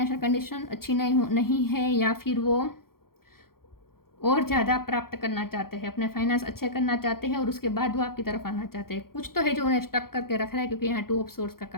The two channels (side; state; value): right; late; 0.93 ms